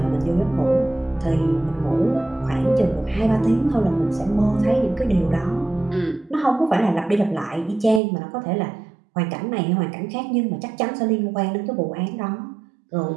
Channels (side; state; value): left; drops out; at 8.0 s